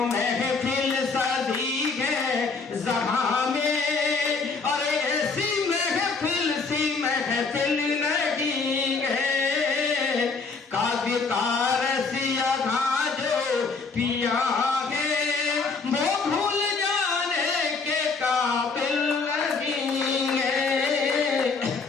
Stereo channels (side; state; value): right; quieter; 4.5 dB